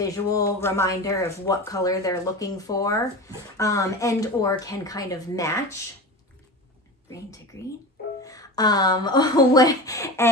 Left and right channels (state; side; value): normal; both; correlation 0.29